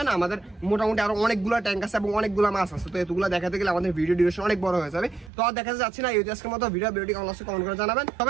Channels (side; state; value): left; drops out; at 5.3 s